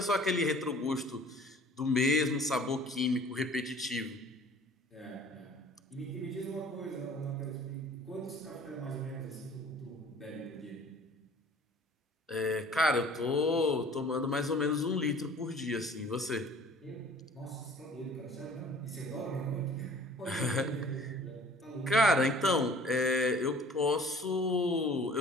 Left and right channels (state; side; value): normal; both; correlation 0.50